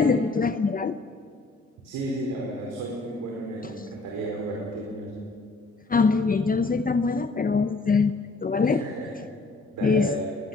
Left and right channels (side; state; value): right; quieter; 3.5 dB